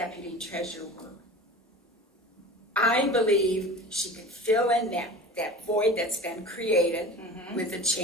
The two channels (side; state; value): both; normal; correlation 0.37